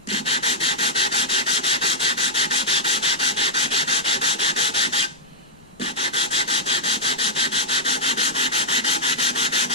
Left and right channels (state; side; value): noise; left; rumble, 30 dB below the sound